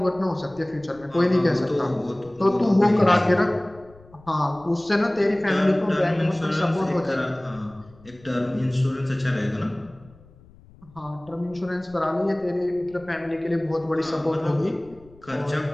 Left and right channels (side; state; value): left; noise; rumble, 25 dB below the sound